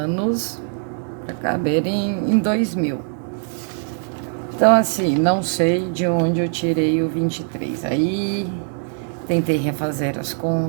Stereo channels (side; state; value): left; silent; 58 dB below the other